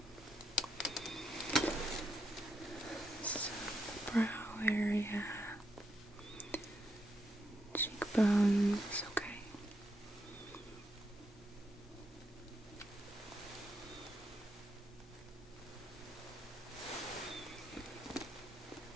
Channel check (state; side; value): normal; both; correlation 0.79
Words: So, brow area, cheekbones, okay.